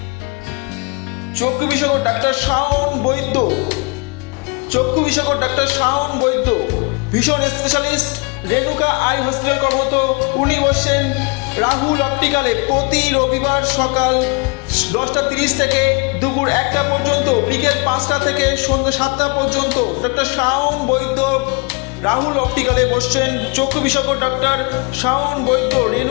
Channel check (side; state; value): right; quieter; 31.0 dB